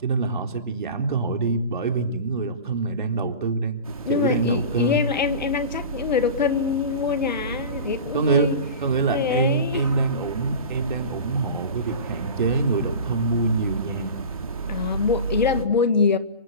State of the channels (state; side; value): inverted; both; correlation -0.33